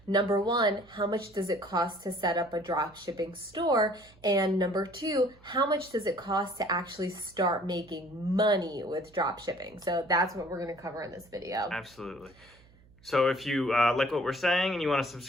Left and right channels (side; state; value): right; noise; hum, 27 dB below the sound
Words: number one, how much does it cost to set up a dropshipping store? And number two, how much does it cost to actually start making money with dropshipping? So that's what we're going to cover in this video. Absolutely. So if you like what we're saying and you want to